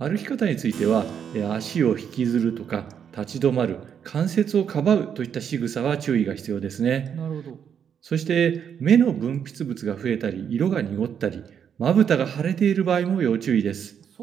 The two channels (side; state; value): left; quieter; 8.0 dB